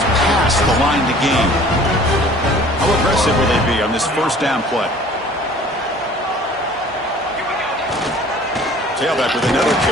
past the line to gain. How aggressive will they be on this first down play? Tailback with another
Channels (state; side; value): normal; both; correlation 0.49